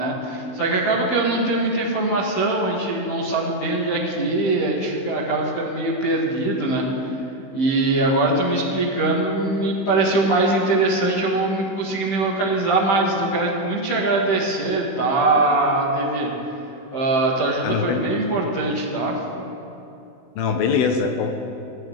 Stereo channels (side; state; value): right; late; 15 ms